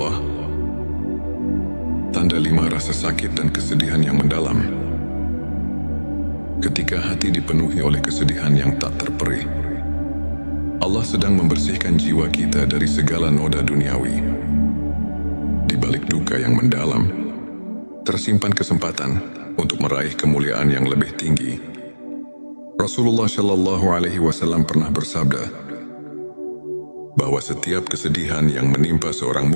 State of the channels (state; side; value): inverted; both; correlation -1.00